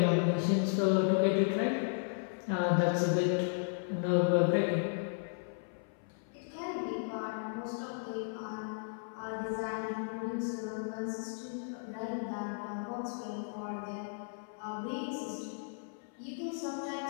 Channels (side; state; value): right; silent; 55 dB below the other